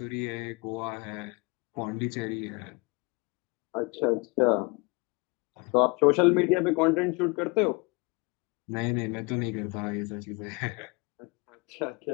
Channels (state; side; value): quieter; right; 27.7 dB